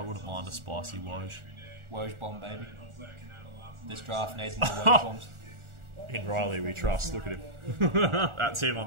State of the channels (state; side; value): late; left; 1.4 ms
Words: mind a spicy Woj. Woj bomb, baby. This draft needs more Woj bombs. In Riley we trust, look at him. That's him on